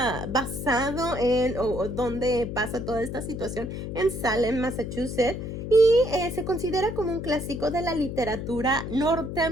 basado en, o donde pasa toda esta situación, en Salem, Massachusetts. Y se considera como un clásico de la literatura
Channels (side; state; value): left; noise; hum, 6 dB below the sound